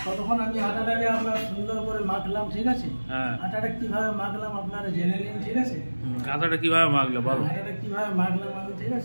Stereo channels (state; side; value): inverted; both; correlation -1.00